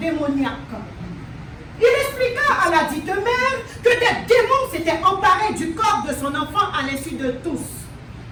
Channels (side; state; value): both; identical; correlation 1.00